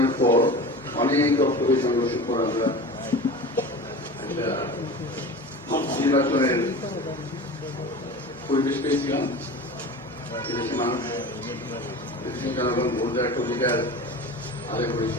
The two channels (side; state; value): both; normal; correlation 0.33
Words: পর অনেক রক্তকে সংঘর্ষের পর আমরা একটা নির্বাচনের পরিবেশ পেয়েছিলাম। এদেশে মানুষ, দেশের জনগণ ভোট দেওয়ার একটা অধিকার আদায়